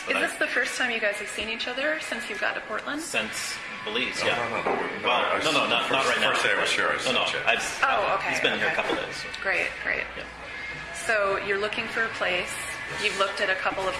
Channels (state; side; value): identical; both; correlation 1.00